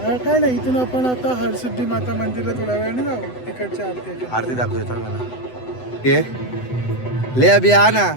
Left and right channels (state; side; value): late; right; 8.0 ms